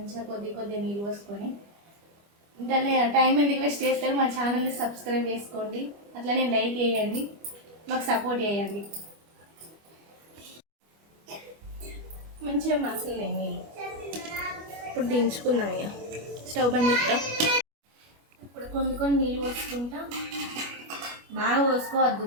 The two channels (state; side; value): late; left; 25 ms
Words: కొద్దిగా నీళ్ళు పోసుకొని. ఇంటనే టైం ఎందుకు వేస్ట్ చేస్తారు, మా ఛానల్ని సబ్స్క్రైబ్ చేసుకోండి, అట్లనే లైక్ చేయండి, మాకు సపోర్ట్ చేయండి. మంచిగా మసలే నీళ్ళు. ఇప్పుడు దించుకుందాం, ఇక స్టవ్ బంద్ చేస్తా. ఇప్పుడు కొన్ని నీళ్ళు పోసుకుంటా, బాగా పోసుకోవద్దు,